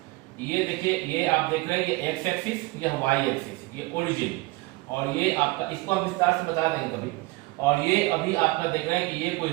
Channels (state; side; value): quieter; left; 22.2 dB